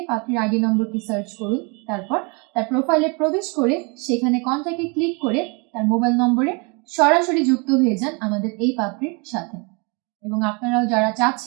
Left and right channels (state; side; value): quieter; left; 31.9 dB